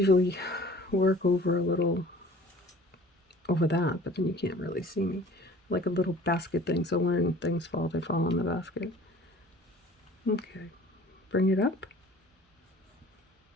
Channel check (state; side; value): normal; both; correlation 0.48